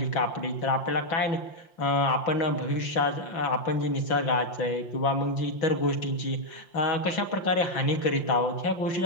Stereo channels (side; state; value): right; late; 5.7 ms